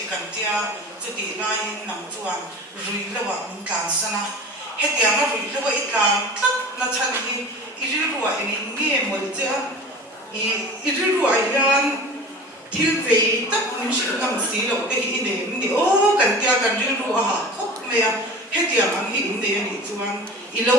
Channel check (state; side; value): normal; both; correlation 0.37